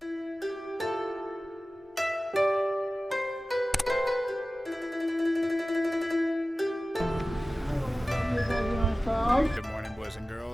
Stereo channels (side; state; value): both; normal; correlation 0.96